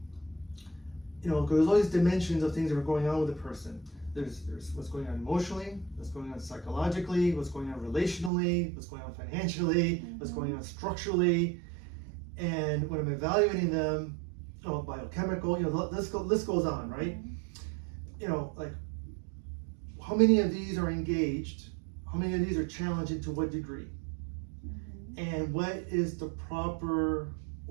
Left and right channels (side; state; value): left; drops out; at 8.3 s